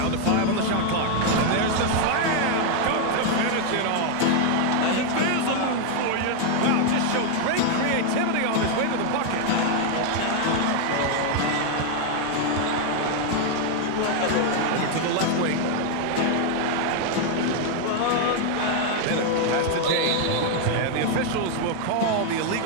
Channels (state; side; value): different; both; correlation 0.00